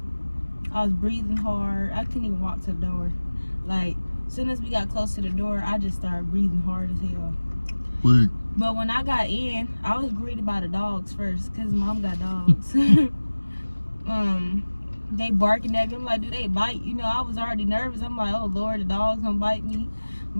I was breathing hard. I couldn't even walk to the door. Like, as soon as we got close to the door, I just started breathing hard as hell. Wait. But when I got in, I was greeted by the dogs first, because mom got dogs. They barking at me. I'm like, do they bite? You know, I was already nervous. I'm like, oh Lord, the dog's gonna bite me.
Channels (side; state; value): both; inverted; correlation -1.00